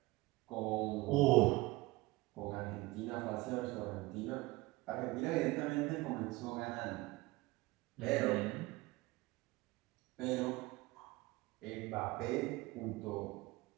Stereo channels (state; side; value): quieter; left; 21.2 dB